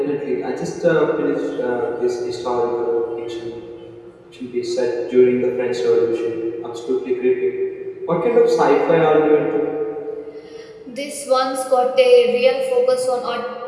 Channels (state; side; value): identical; both; correlation 1.00